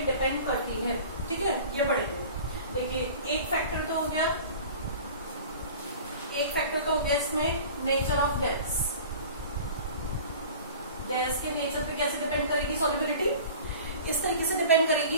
डिपेंड करती है, ठीक है, ये पढ़ेंगे। देखिए, एक फैक्टर तो हो गया इसमें नेचर ऑफ गैस। गैस के नेचर पे कैसे डिपेंड करेगी सॉल्युबिलिटी? इस तरीके से डिपेंड करेगी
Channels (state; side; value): inverted; both; correlation -0.41